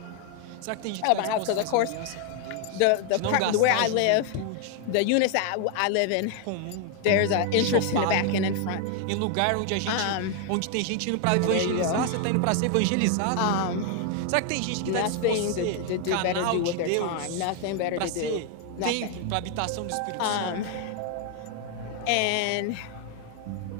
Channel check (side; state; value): both; different; correlation 0.00